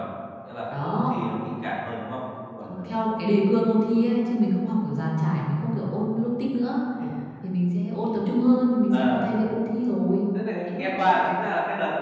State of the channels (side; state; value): both; identical; correlation 1.00